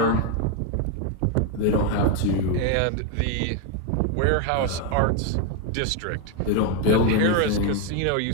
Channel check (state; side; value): different; both; correlation 0.02